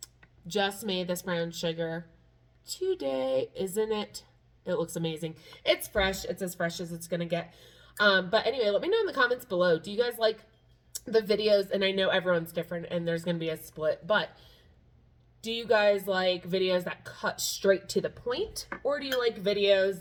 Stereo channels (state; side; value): identical; both; correlation 1.00